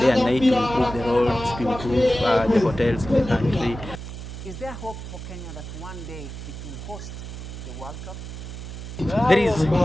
and night to improve the roads, to improve the hotels in the country. There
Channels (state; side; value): noise; right; hum, 10 dB below the sound